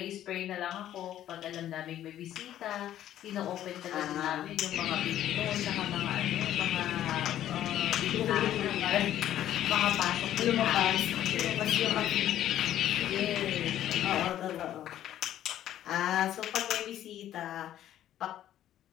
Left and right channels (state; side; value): quieter; right; 12.0 dB